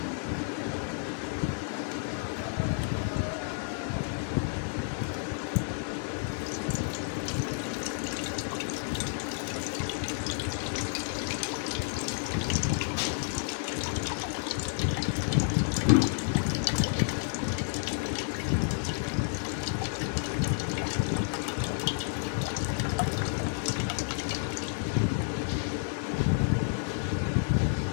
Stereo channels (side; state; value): right; silent; 57 dB below the other